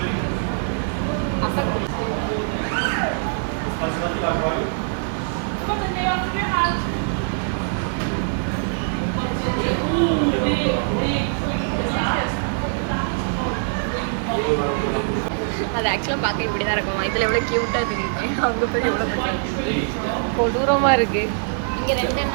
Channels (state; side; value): silent; left; 56 dB below the other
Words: அது ஆக்சுவலாக பார்க்க இப்படி தான் இருக்குமா? இதில் எவ்வளோ க்யூட்டாக தெரியுது. அங்கே போய் எவ்வளோ பிடிக்காது, கொடூரமாக இருக்குது. இங்கே 2